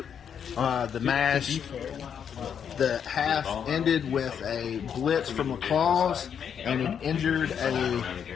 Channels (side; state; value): right; quieter; 7.9 dB